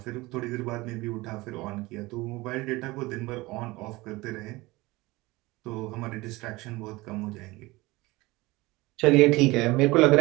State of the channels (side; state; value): left; quieter; 21.3 dB